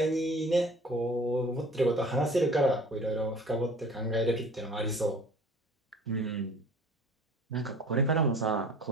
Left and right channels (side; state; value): both; normal; correlation 0.47